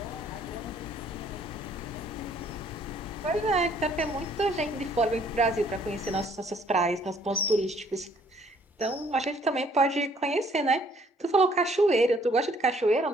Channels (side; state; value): both; normal; correlation 0.62